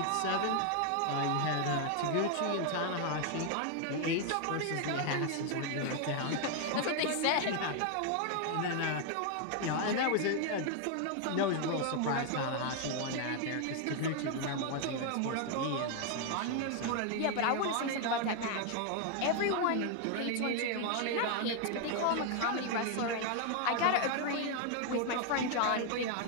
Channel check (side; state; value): both; different; correlation 0.00